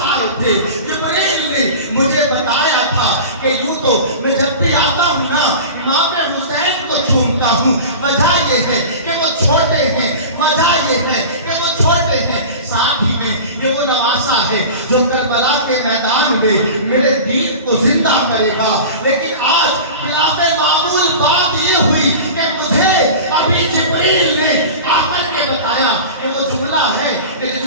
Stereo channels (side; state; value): both; inverted; correlation -0.33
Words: آئے تھے. جبریل نے مجھے بتایا تھا کہ یوں تو میں جب بھی آتا ہوں نا امام حسین کو چومتا ہوں. وجہ یہ ہے کہ وہ چھوٹے ہیں, وجہ یہ ہے کہ وہ چھوٹے ہیں, ساتھ ہی میں یہ وہ نواسا ہے جو کربلا کے میدان میں میرے دین کو زندہ کرے گا. لیکن آج خلاف معمول بات یہ ہوئی کہ مجھے ابھی جبریل نے آ کر کے بتایا کہ وہ جملہ ہے کہ